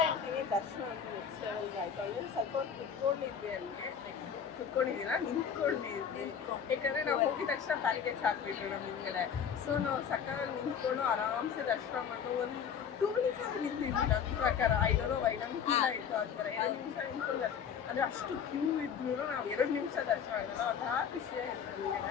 ಹೇಳ್ತೀನಿ, ದರ್ಶನ ಅಂತೂ ನೆಕ್ಸ್ಟ್ ಲೆವೆಲ್ಗೆ ಆಯ್ತು. ಅಲ್ಲಿ ಸ್ವಲ್ಪ ಕುತ್ಕೊಂಡಿದ್ವಿ, ಅಲ್ಲಿಗೆ ಕುತ್ಕೊಂಡಿದ್ದೀನ ನಿಂತ್ಕೊಂಡಿದ್ವಿ. ಯಾಕಂದ್ರೆ ನಾವು ಹೋಗಿದ ತಕ್ಷಣ ಪ್ಯಾರಿಗೇಜ್ ಹಾಕ್ಬಿಟ್ರು ನಮ್ಮ ಹಿಂದ್ಗಡೆ. ಸೊ ನಾವು ಸಕ್ಕತ್ತಾಗಿ ನಿಂತ್ಕೊಂಡು ಆರಾಮ್ಸೆ ದರ್ಶನ ಮಾಡ್ಕೊಂಡು ಒಂದು 2 minutes ಆದ್ರೂ ನಿಂತಿದ್ವಿ. ನನ್ನ ಪ್ರಕಾರ ಐಡೋನೋ ಫೀಲ್ ಆಯ್ತು. ಅಂತಾರೆ 2 ನಿಮಿಷ ನಿಂತ್ಕೊಂಡು ಅಂದ್ರೆ ಅಷ್ಟು ಕ್ಯೂ ಇದ್ರು ನಾವು 2 ನಿಮಿಷ ದರ್ಶನ ಮಾಡಿದ್ವಿ. ಒಂಥರ ಖುಷಿ ಆಯ್ತು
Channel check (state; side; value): quieter; right; 7.4 dB